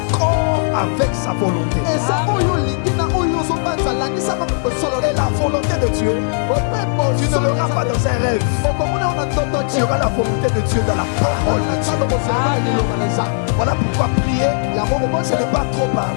avec sa volonté. Et la volonté de Dieu, tu ne l'auras pas dans un rêve. Tu auras la volonté de Dieu dans la parole de Dieu. Voilà pourquoi prier, ce n'est pas trop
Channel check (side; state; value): right; silent; digital silence